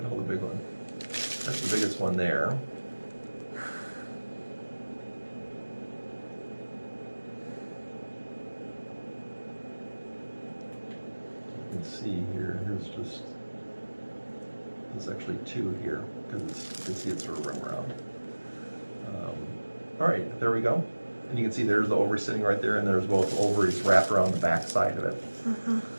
the biggest one there. You can see here, there's actually two here, because you can see it's sort of around. All right, there we go. And you can see there's the ovary sitting right there, and there's both ovaries wrapped around the back side of it.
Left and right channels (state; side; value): inverted; both; correlation -1.00